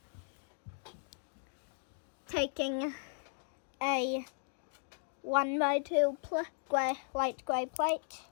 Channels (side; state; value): right; silent; digital silence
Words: taking a 1x2 light grey plate,